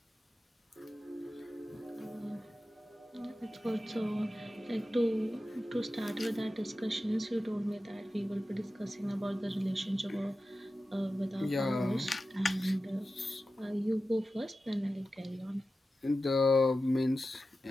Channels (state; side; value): normal; both; correlation 0.93